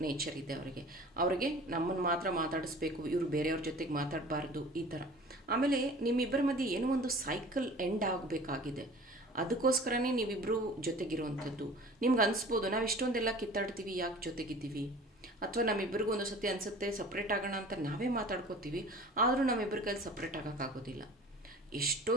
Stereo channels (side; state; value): both; normal; correlation 0.43